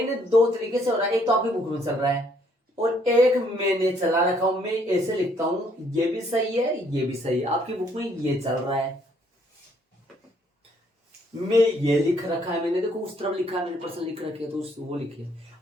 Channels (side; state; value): both; normal; correlation 0.67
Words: 2 तरीके से हो रहा है। एक तो आपकी बुक में चल रहा है और एक मैंने चला रखा हूं। मैं ऐसे लिखता हूं, ये भी सही है, ये भी सही है। आपकी बुक में ये चल रहा है, मैं ये लिख रखा है, मैंने देखो उस तरफ लिखा है, मैंने पर्सन लिख रखे है तो वो लिखे।